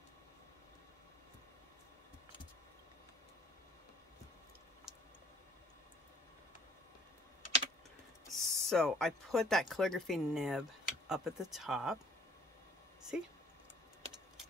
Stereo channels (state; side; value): normal; both; correlation 0.57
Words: So I put that calligraphy nib up at the top. See?